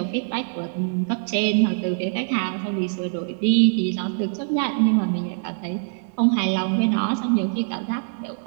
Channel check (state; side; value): silent; left; 59 dB below the other